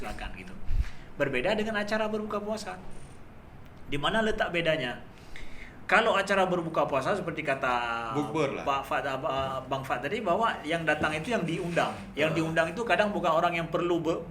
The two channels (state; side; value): identical; both; correlation 1.00